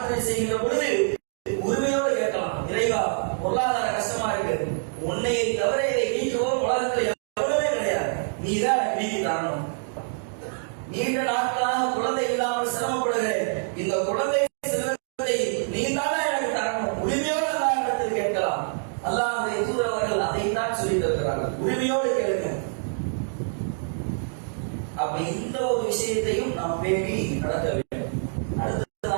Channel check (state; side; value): silent; left; digital silence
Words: செய்கின்ற பொழுது உரிமையோடு கேட்கலாம். இறைவா, பொருளாதார கஷ்டமா இருக்கு, உன்னையை தவிர இதை நீக்குவோம் உலகத்தில் எவ்வளவே கிடையாது, நீ தான் நீக்கி தரணும். நீண்ட நாட்களாக குழந்தை இல்லாமல் சிரமப்படுகிறேன், இந்த குழந்தை செல்வத்தை நீ தானே எனக்கு தரணும். உரிமையோடு அல்லாஹ்விடத்தில் கேட்கலாம். அல்லாஹ்வுடைய தூதர் அவர்கள் அதைத்தான் சொல்லி தருகிறார்கள், உரிமையோடு கேளுங்க. அப்ப இந்த ஒரு விஷயத்தையும் நாம் பேணி நடக்க வேண்டும்.